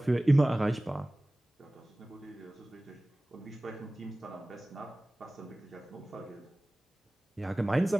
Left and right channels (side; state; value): both; normal; correlation 0.98